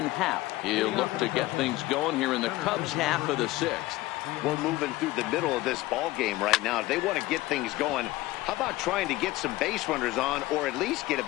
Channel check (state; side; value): quieter; right; 18.2 dB